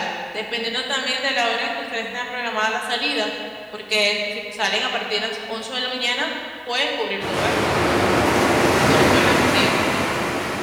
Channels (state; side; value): identical; both; correlation 1.00